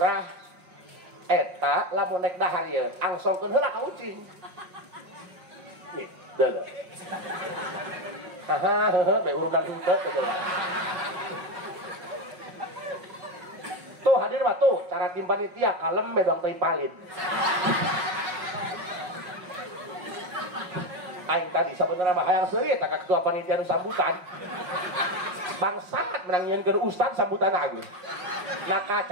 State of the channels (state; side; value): late; left; 5.5 ms